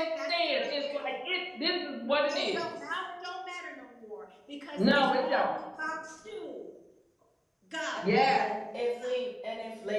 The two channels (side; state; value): both; identical; correlation 1.00